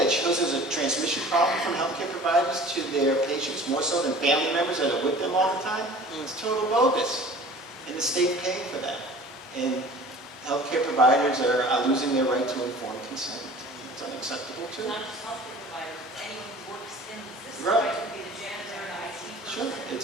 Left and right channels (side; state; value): both; normal; correlation 0.44